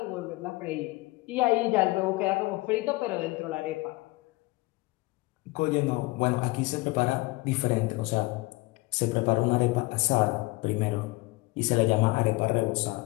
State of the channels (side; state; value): right; quieter; 22.3 dB